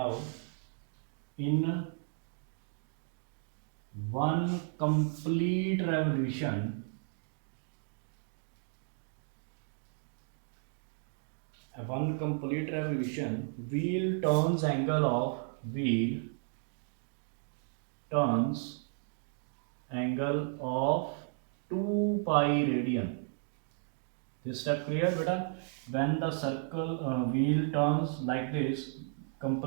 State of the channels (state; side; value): silent; left; 55 dB below the other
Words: in 1 complete revolution, wheel turns angle of 2 pi radian. This step clear, beta? When the wheel turns like this,